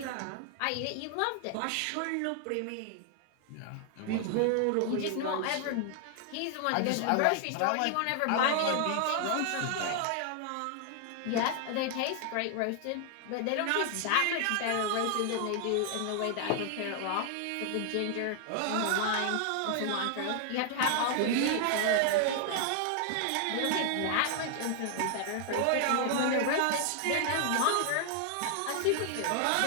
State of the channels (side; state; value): both; different; correlation 0.00